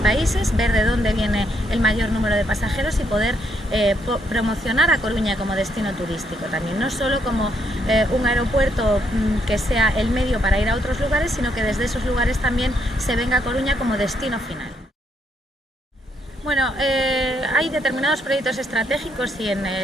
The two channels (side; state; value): both; normal; correlation 0.75